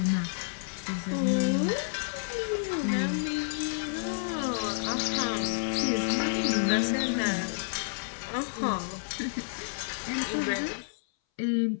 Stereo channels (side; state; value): right; silent; 58 dB below the other